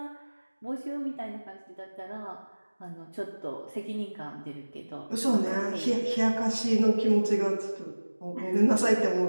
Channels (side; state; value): both; inverted; correlation -1.00